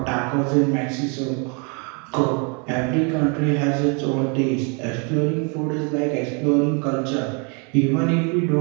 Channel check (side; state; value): left; quieter; 35.2 dB